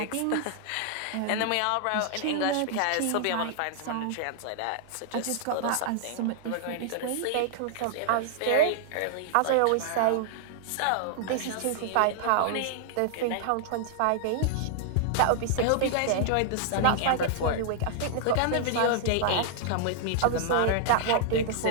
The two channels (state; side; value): different; both; correlation -0.01